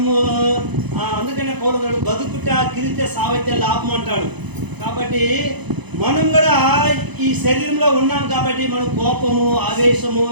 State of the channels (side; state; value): left; late; 0.99 ms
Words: అందుకనే పౌరుడు బతుకుట కిరితే సావైతే లాభం అంటాడు. కాబట్టి మనం కూడా ఈ శరీరంలో ఉన్నాం కాబట్టి మనం కోపము, ఆవేశము